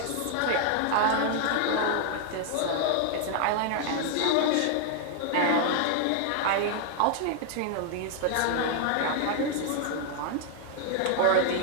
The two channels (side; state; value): both; different; correlation 0.00